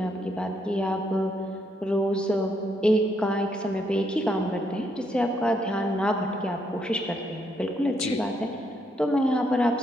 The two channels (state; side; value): normal; both; correlation 0.75